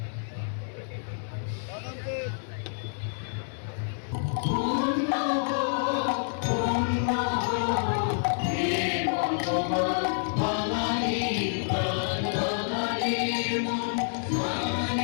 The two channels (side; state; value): right; silent; 59 dB below the other